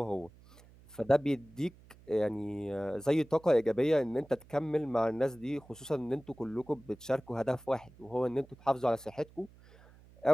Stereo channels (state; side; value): noise; right; hum, 24 dB below the sound